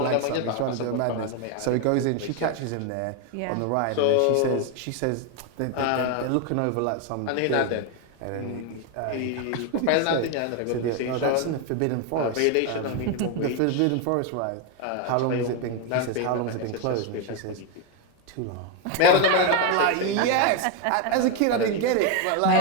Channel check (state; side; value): different; both; correlation 0.01